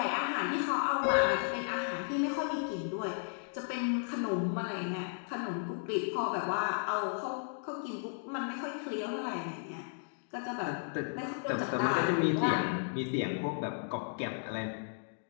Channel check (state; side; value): silent; right; digital silence